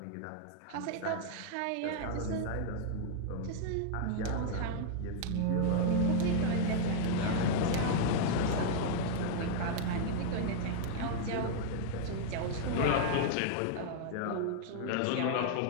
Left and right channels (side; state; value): both; different; correlation 0.00